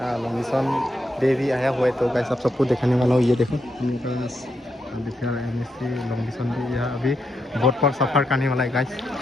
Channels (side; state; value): both; normal; correlation 0.82